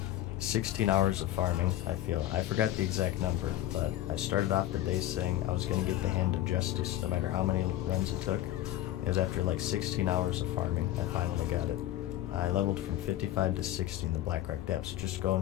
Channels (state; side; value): quieter; right; 13.7 dB